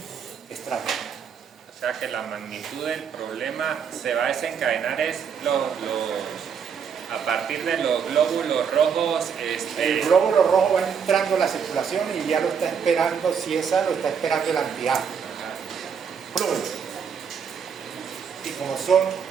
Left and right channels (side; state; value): left; quieter; 6.9 dB